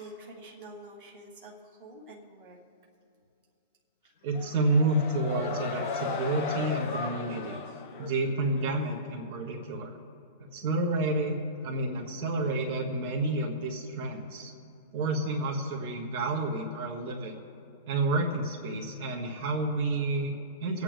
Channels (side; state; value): both; inverted; correlation -0.32